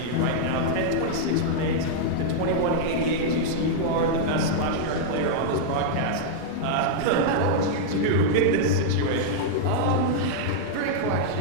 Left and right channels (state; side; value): different; both; correlation -0.01